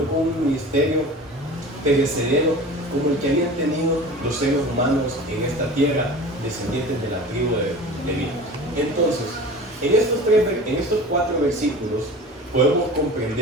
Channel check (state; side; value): normal; both; correlation 0.37